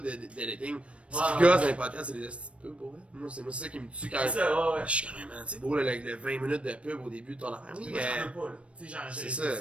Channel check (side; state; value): left; late; 0.061 ms